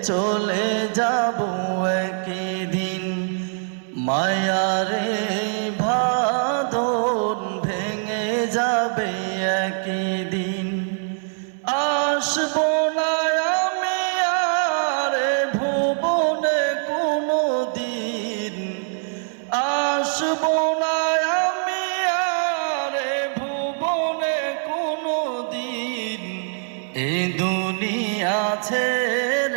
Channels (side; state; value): left; silent; 63 dB below the other